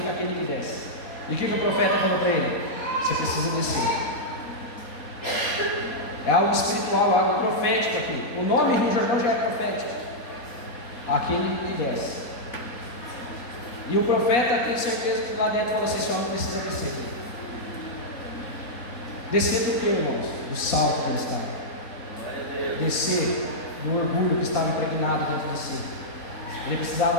aquele que desce. E o que o profeta falou para ele? Você precisa descer. É algo espiritual, algo profético aqui. O nome Rio Jordão já é profético. Aquele que desce. E o profeta tem certeza que lá dentro falou assim: esse homem precisa descer. Descer do que, irmãos? Do salto que ele estava. Descer do orgulho que estava impregnado dentro de si. Ele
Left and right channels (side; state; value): right; late; 4.1 ms